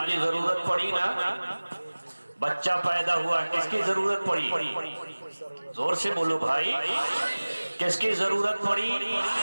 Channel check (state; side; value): inverted; both; correlation -1.00